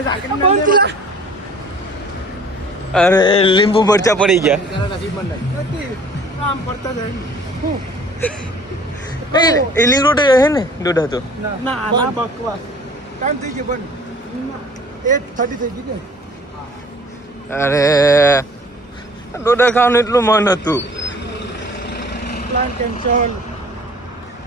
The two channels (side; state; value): both; normal; correlation 0.50